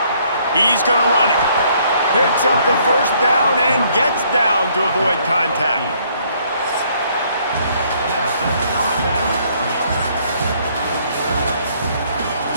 He's going to run it. Picks up the first down and gets down to avoid contact.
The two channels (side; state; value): both; inverted; correlation -0.65